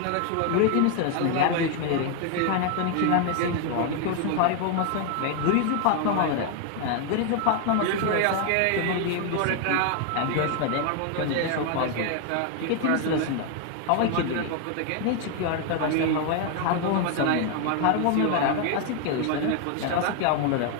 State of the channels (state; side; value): different; both; correlation 0.00